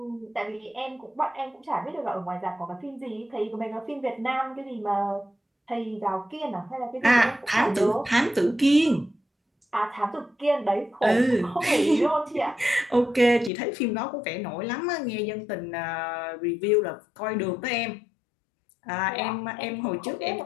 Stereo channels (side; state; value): right; drops out; at 13.5 s